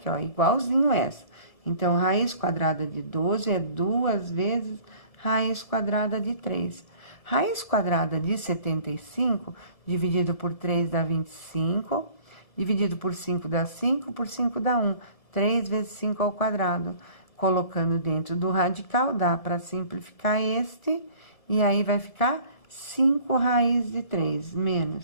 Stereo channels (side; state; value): right; late; 1.7 ms